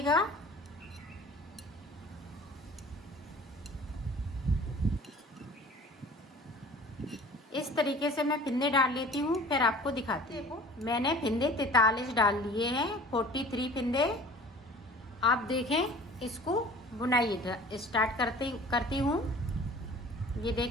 इस तरीके से मैं फिंदे डाल लेती हूँ, फिर आपको दिखाती हूँ। मैंने फिंदे 43 डाल लिए हैं, 43 फिंदे। आप देखें, इसको बुनाई स्टार्ट करती हूँ। ये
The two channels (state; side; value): normal; both; correlation 0.45